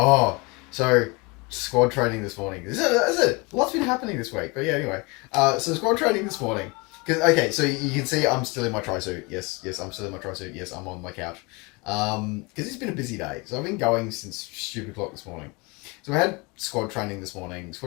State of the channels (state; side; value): quieter; right; 27.5 dB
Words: So squad training this morning. Is it? Lots been happening this week. But yeah, anyway. So squad training this morning. Okay, so you can see I'm still in my tri-suit. Yes, I'm still in my tri-suit. Yes, I'm on my couch. Because it's been a busy day. So I've been going since stupid o'clock this morning. So we had squad training this morning.